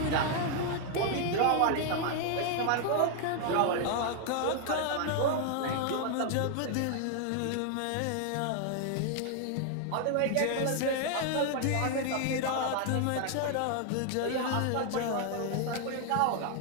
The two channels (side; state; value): both; different; correlation 0.00